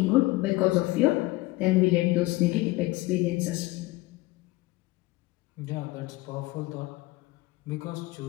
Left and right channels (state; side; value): quieter; right; 20.2 dB